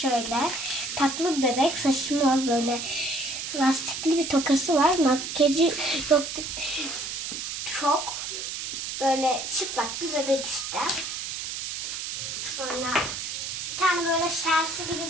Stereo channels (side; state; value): right; noise; hiss, 5 dB below the sound